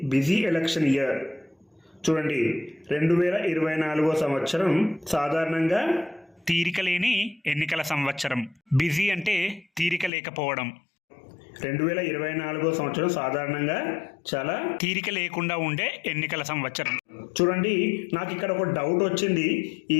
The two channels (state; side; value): drops out; right; at 10.1 s